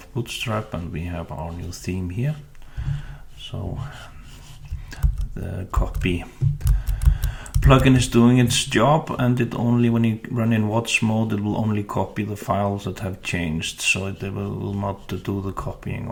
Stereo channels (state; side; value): identical; both; correlation 1.00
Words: Bootstrap, and we have our new theme here. So the copy plugin is doing its job, and it only, when you run in watch mode, it will only copy the files that have changed, so it will not do the copying